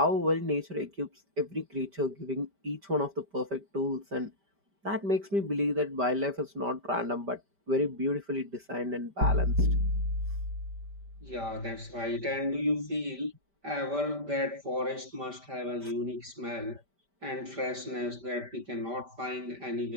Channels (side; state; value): left; late; 5.1 ms